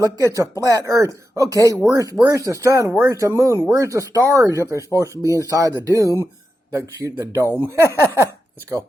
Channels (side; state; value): both; normal; correlation 0.89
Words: look, it's a flat earth. Okay, where's the sun? Where's the moon? Where's the stars if they're supposed to be inside the dome? Let's go.